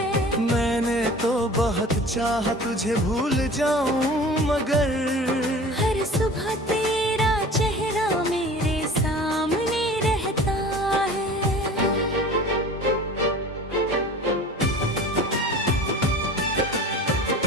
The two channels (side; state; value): both; normal; correlation 0.41